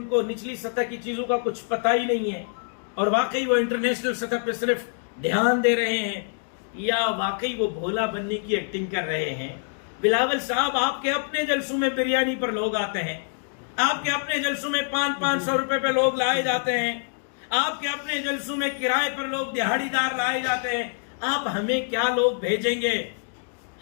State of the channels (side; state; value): right; silent; digital silence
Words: کو نچلی سطح کی چیزوں کا کچھ پتہ ہی نہیں ہے اور واقعی وہ انٹرنیشنل سطح پہ صرف دھیان دے رہے ہیں، یا واقعی وہ بھولا بننے کی ایکٹنگ کر رہے ہیں. بلاول صاحب، آپ کے اپنے جلسوں میں بریانی پر لوگ آتے ہیں، آپ کے اپنے جلسوں میں 500 روپے پہ لوگ لائے جاتے ہیں، آپ کے اپنے جلسوں میں کرائے پر لوگ دہاڑی دار لائے جاتے ہیں. آپ ہمیں کیا لوگ بھیجیں گے؟